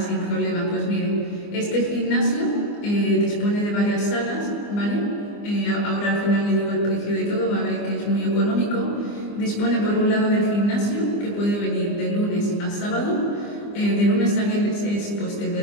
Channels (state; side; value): late; right; 24 ms